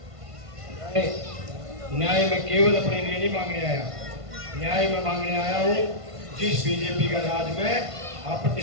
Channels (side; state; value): left; late; 1.5 ms